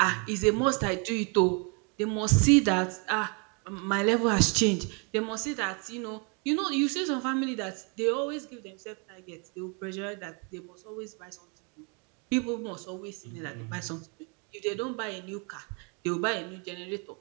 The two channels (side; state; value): left; quieter; 34.8 dB